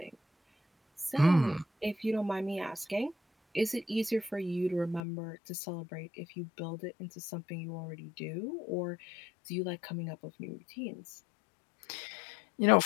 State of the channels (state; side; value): drops out; right; at 5.0 s